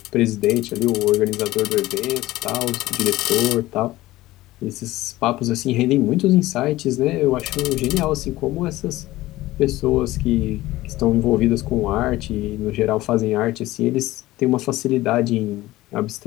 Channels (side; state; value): right; quieter; 17.3 dB